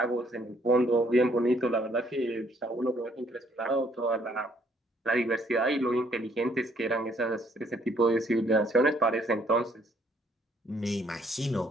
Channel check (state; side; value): normal; both; correlation 0.66